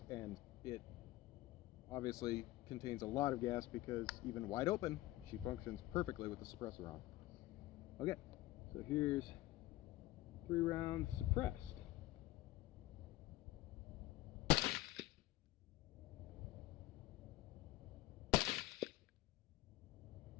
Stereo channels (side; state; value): right; quieter; 17.4 dB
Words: and it obviously contains a lot of gas because even wide open, she functions perfectly with the suppressor on. Okay, so here's 3 rounds suppressed.